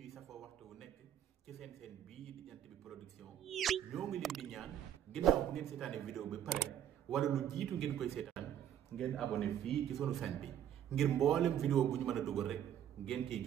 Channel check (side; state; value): left; quieter; 10.2 dB